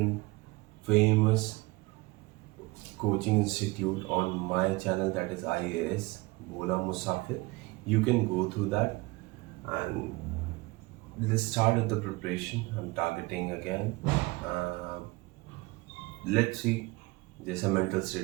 famous coaching institute on my channel, that is IAS Bola Musafir. You can go through that and let's start with the preparation. I'm targeting again. Let's see जैसा mental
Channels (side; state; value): left; quieter; 23.3 dB